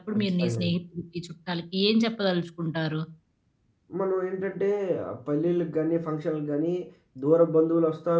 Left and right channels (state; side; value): identical; both; correlation 1.00